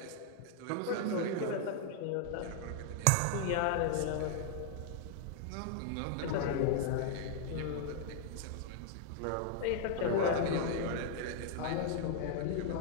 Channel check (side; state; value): both; different; correlation 0.00